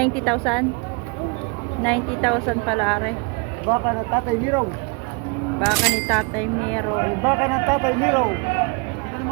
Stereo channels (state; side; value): quieter; left; 31.7 dB